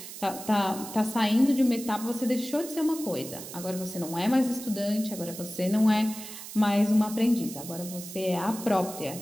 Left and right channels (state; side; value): noise; right; hiss, 12 dB below the sound